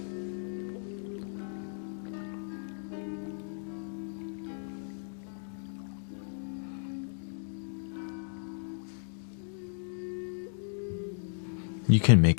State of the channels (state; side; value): silent; right; digital silence